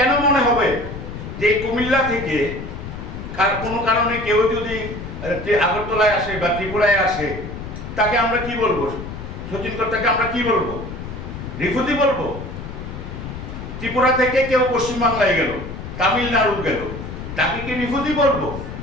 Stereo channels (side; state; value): left; noise; rumble, 9 dB below the sound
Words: মনে হবে যে কুমিল্লা থেকে কোনো কারণে কেউ যদি আগরতলায় আসে বা ত্রিপুরায় আসে তাকে আমরা কি বলবো? সতীন কর্তাকে আমরা কি বলবো? রিফিউজি বলবো? ত্রিপুরা থেকে কেউ পশ্চিমবাংলায় গেল, তামিলনাড়ু গেল, তাকে কি রিফিউজি বলবো?